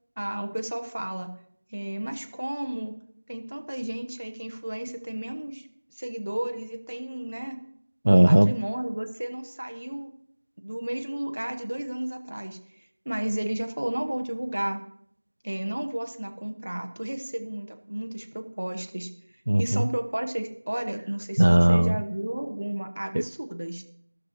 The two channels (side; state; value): both; inverted; correlation -1.00